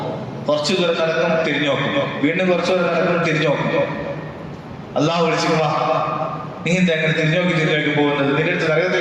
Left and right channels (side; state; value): both; identical; correlation 1.00